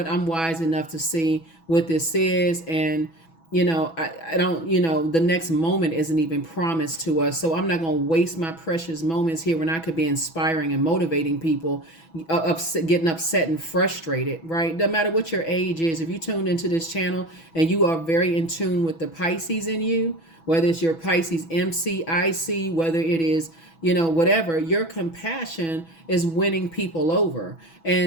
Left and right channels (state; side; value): late; right; 6.1 ms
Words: I'm wise enough to see what this is, and I don't, the next moment isn't even promised to us. So I'm not going to waste my precious moments here when I could be inspiring and motivating people, getting upset and frustrated, right? No matter what your age is, if you tuned into this channel and you are very in tune with the Pisces in you, whether it's your Pisces MC, IC, whether it is, whatever, your compassion is winning people over.